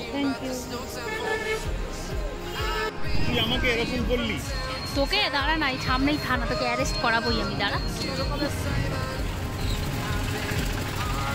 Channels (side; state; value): both; identical; correlation 1.00